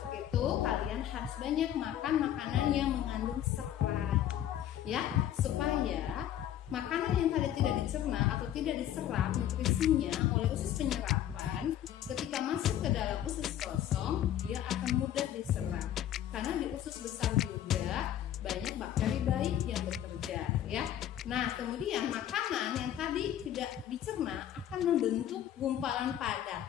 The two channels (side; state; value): right; quieter; 11.2 dB